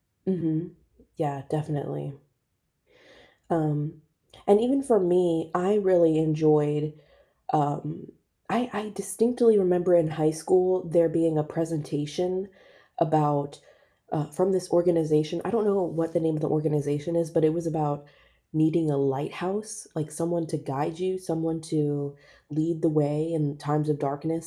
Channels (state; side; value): identical; both; correlation 1.00